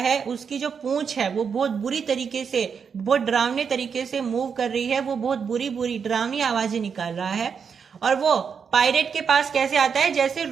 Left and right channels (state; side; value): quieter; left; 6.5 dB